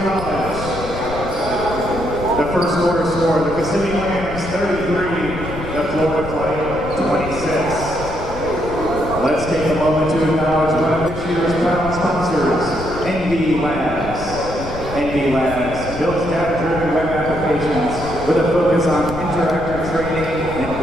College. The first quarter score, the Kissimmee Lambs 33, the Florida Flight 26. Let's take a moment to acknowledge one of this year's proud sponsors, NB Labs. NB Labs builds data-driven web applications with a focus on interactive training and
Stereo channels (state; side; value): noise; left; rumble, 10 dB below the sound